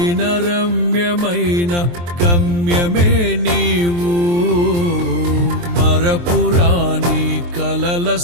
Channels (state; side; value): late; left; 23 ms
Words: రమ్యమైన గమ్యమే నీవు, మరపురాని కలల